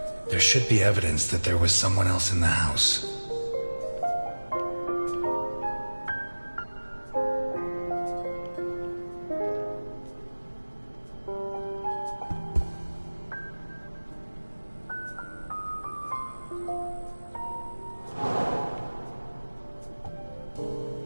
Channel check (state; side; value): inverted; both; correlation -1.00